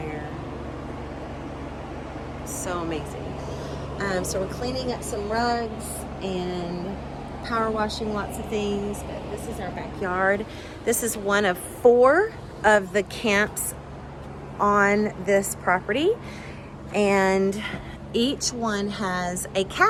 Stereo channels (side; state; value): both; identical; correlation 1.00